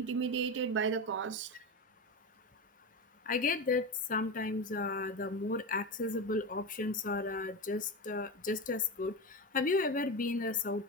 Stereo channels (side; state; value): both; normal; correlation 0.20